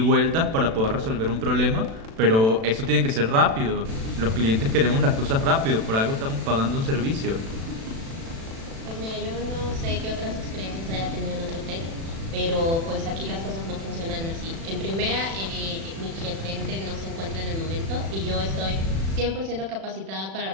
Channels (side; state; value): left; late; 36 ms